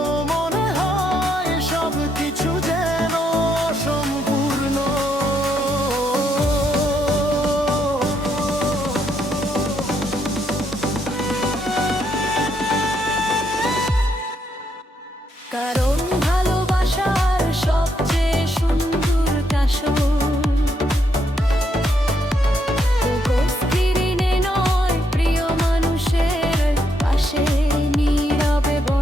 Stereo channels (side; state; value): both; normal; correlation 0.76